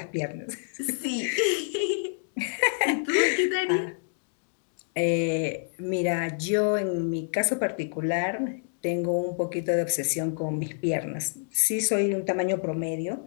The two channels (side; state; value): right; silent; digital silence